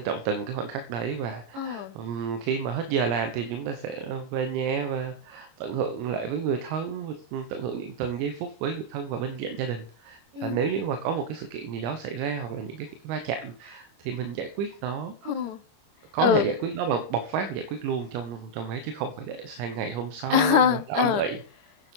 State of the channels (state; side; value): late; left; 25 ms